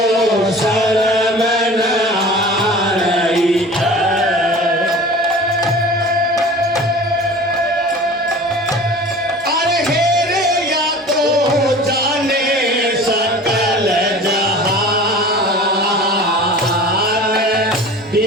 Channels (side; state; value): both; normal; correlation 0.40